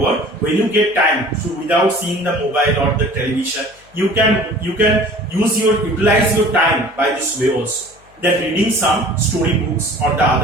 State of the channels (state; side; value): noise; left; hum, 30 dB below the sound